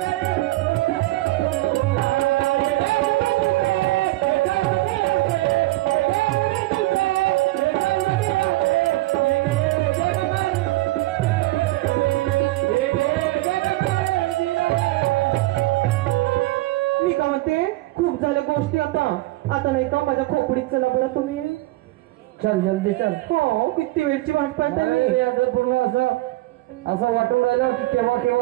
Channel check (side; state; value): left; quieter; 19.0 dB